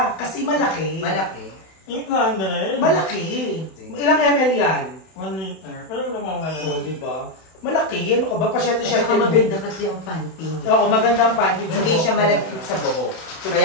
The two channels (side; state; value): right; late; 31 ms